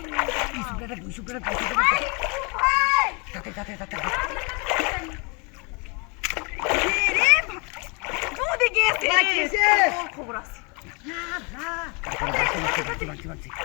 সুপ্রাটা তাতে তাতে তাতে রে দুধে গেছে খবর আছে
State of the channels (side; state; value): right; quieter; 32.2 dB